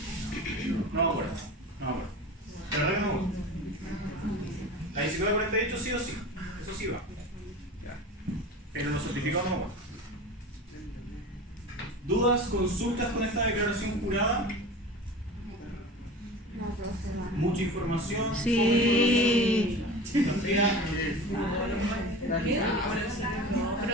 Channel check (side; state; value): both; normal; correlation 0.33